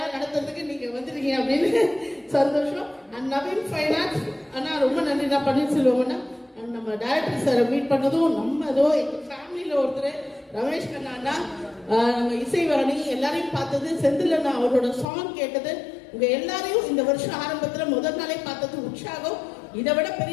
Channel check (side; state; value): right; drops out; at 15.1 s